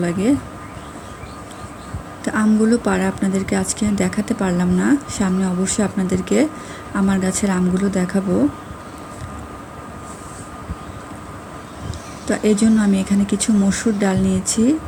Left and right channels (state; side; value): identical; both; correlation 1.00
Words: লাগে। তো আমগুলো পাড়া আপনাদেরকে আজকে দেখাতে পারলাম না। সামনে অবশ্যই আপনাদেরকে আমার গাছের আমগুলো দেখাবো। তো এই জন্য আমি এখানে কিছু মসুর ডাল নিয়েছি।